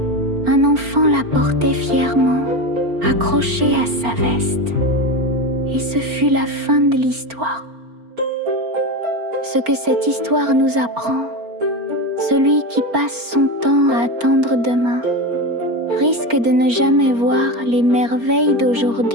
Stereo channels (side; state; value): left; late; 4.4 ms